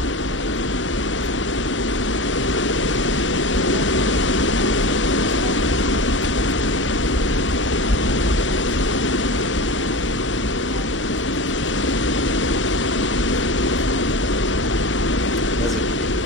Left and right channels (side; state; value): both; normal; correlation 0.28